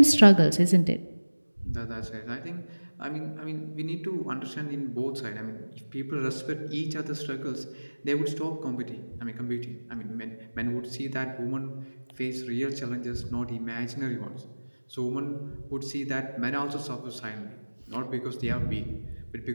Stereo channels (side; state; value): both; inverted; correlation -1.00